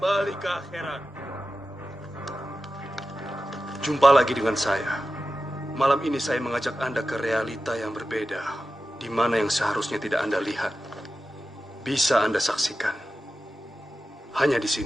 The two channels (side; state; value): both; normal; correlation 0.93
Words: ke akhirat. Jumpa lagi dengan saya. Malam ini saya mengajak Anda ke realita yang berbeda, di mana yang seharusnya tidak Anda lihat, bisa Anda saksikan. Hanya di